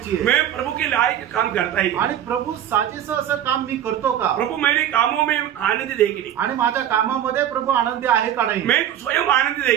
आहे। मैं प्रभु के लायक काम करता है, आणि प्रभू साजेसं असं काम मी करतो का? प्रभु मेरे कामों में आनंद दे की नहीं, आणि माझ्या कामामध्ये प्रभू आनंदी आहे का नाही, मैं स्वयं आनंद दे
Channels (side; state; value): left; quieter; 10.7 dB